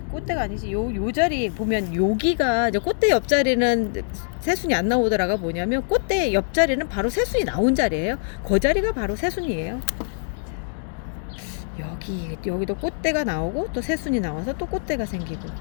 꽃대가 아니지. 요 자리 보면 여기가 이제 꽃대 옆자리는 새순이 안 나오더라가 뭐냐면 꽃대 옆자리는 바로 새순이 나온 자리예요. 그 자리가 바로 새순이에요. 여기도 꽃대가 나오고 또 새순이 나와서 또 꽃대가 생기고,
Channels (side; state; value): right; silent; digital silence